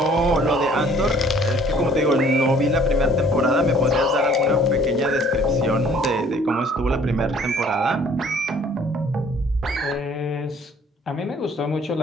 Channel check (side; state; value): both; normal; correlation 0.56